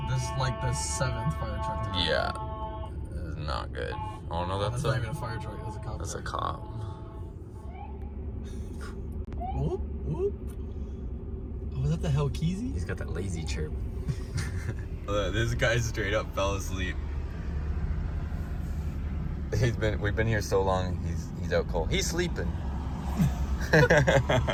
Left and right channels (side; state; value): both; identical; correlation 1.00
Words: This is like the 7th fire truck today. Yeah, it is not good. Oh no, that's not even a fire truck, that's a cop. That's a cop. Whoop, whoop. Oh, was that the Hellkeezy? He's got that lazy chirp. This guy straight up fell asleep. We've been here so long, he's out cold. He's sleeping.